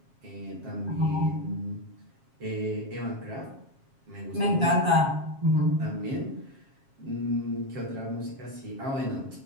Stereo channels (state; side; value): late; left; 7.4 ms